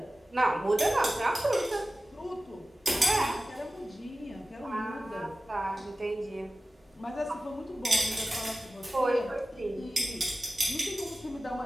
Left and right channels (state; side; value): normal; both; correlation 0.96